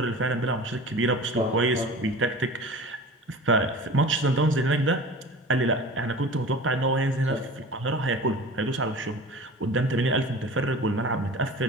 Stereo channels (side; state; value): both; normal; correlation 0.37